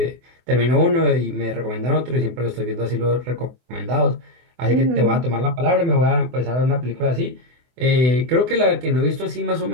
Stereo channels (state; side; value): late; left; 24 ms